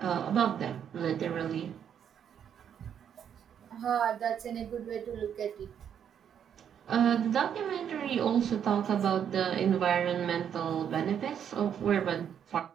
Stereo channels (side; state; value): left; quieter; 8.6 dB